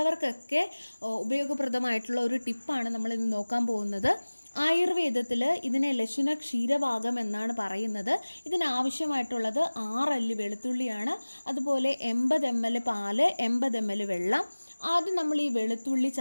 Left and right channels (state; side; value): inverted; both; correlation -1.00